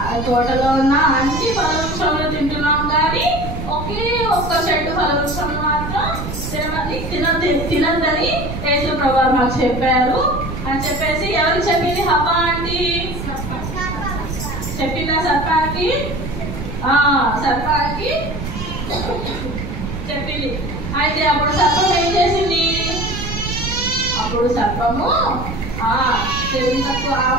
తోటలో ఉన్న అన్ని ఫలవృక్షంలో తింటున్నాం కానీ ఒకే ఒక్క చెట్టు ఫలవృక్షం మాత్రం తినద్దని యేసుప్రభు వారు మాకు చెప్పారు అని చెప్పేసి ఎవరికి చెప్పింది? హవ్వ ఆంటీ చెప్పిందా సర్పానికి? సర్పానికి చెప్పింది. అయితే అప్పుడు సర్పం ఏం చేసింది? అప్పుడు సర్పము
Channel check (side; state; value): right; noise; rumble, 6 dB below the sound